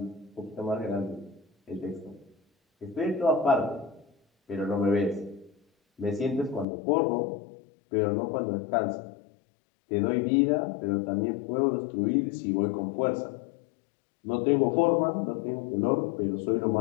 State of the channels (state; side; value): drops out; right; at 6.7 s